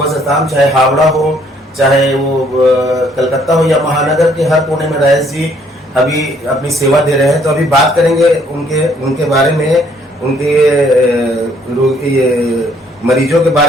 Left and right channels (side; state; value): both; normal; correlation 0.64